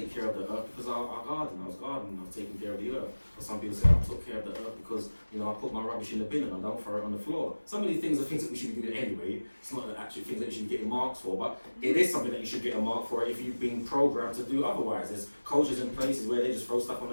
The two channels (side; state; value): both; inverted; correlation -1.00